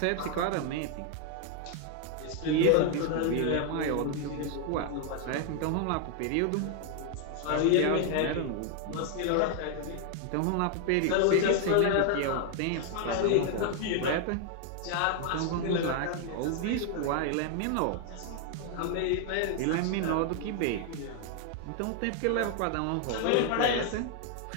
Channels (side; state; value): both; different; correlation 0.00